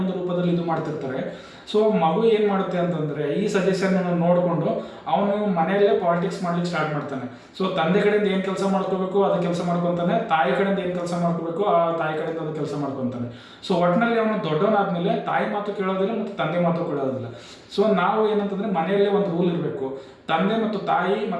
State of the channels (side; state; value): both; identical; correlation 1.00